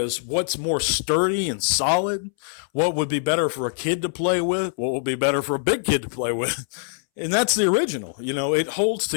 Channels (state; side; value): silent; right; 63 dB below the other